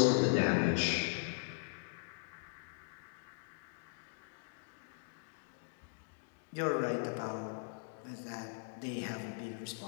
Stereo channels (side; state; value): right; silent; digital silence